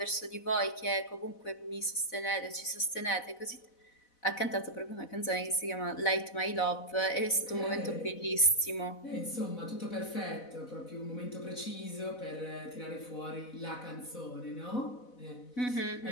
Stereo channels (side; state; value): right; late; 4.0 ms